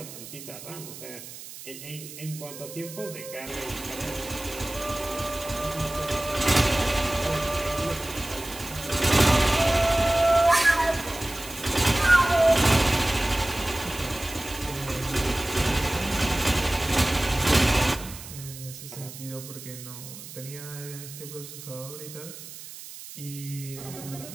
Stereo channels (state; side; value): noise; right; hiss, 14 dB below the sound